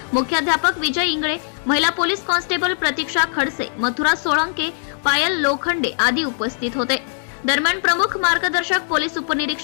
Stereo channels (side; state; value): right; silent; digital silence